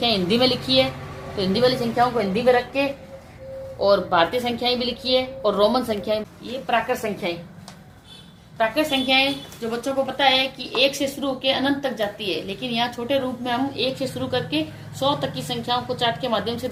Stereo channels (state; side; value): identical; both; correlation 1.00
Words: हिंदी में लिखी है, तो हिंदी वाली संख्याओं को हिंदी में रख के, और भारतीय संख्याएं भी लिखी है और रोमन संख्याएं, ये प्राकृत संख्याएं जो बच्चों को पता है कि 1 से शुरू होकर अनंत तक जाती है, लेकिन यहाँ छोटे रूप में हम 1 से शुरू करके 100 तक की संख्याओं को चार्ट के माध्यम से